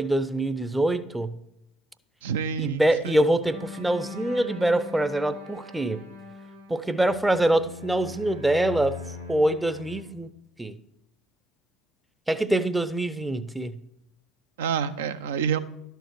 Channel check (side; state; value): both; normal; correlation 0.77